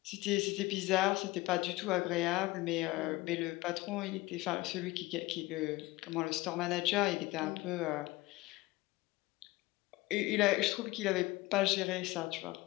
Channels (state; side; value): quieter; right; 20.1 dB